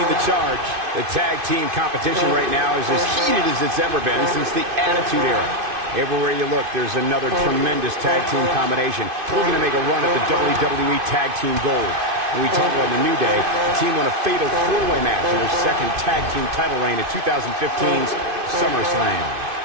the charge. The tag team competition right now is as heated as it's ever been since the Attitude Era. Everywhere you look, there's another tremendous tag team combination looking to make a run at the WWE Tag Team Gold. When we talk about the New Day, the team won a fatal four-way match in their second tag team title reign at 2015's SummerSlam.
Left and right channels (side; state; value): left; late; 2.5 ms